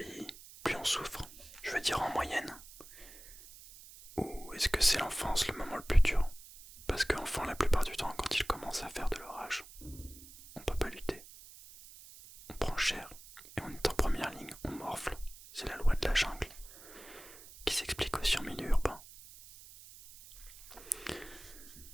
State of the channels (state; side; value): noise; right; hiss, 18 dB below the sound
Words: plus on souffre? Je veux dire en moyenne. Ou est-ce que c'est l'enfance le moment le plus dur? Parce qu'enfant, la plupart du temps, quand il commence à faire de l'orage, on peut pas lutter. On prend cher, et on est en première ligne, on morfle. C'est la loi de la jungle, qui s'explique aussi en milieu urbain.